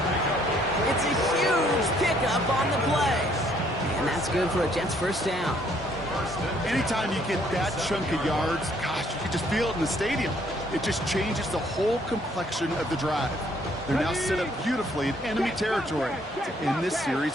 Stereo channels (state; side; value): normal; both; correlation 0.65